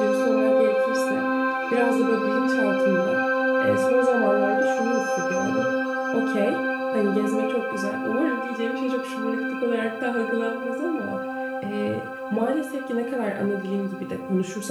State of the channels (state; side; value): identical; both; correlation 1.00